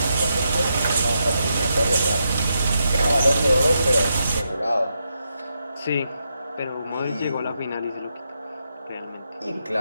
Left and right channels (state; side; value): inverted; both; correlation -0.83